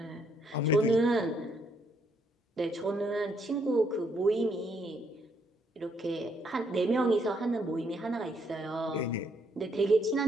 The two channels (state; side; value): normal; both; correlation 0.72